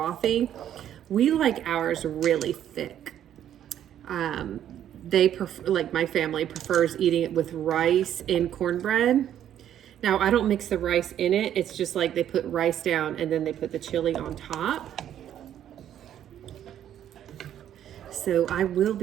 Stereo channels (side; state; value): left; quieter; 10.6 dB